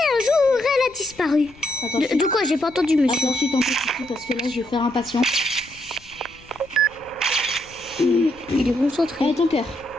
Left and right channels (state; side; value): noise; left; rumble, 25 dB below the sound